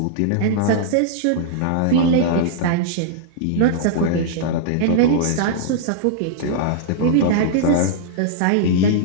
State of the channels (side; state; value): both; different; correlation -0.02